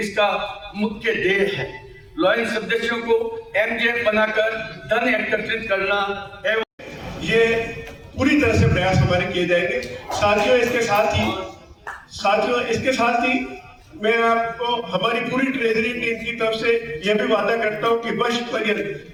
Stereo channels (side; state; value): both; identical; correlation 1.00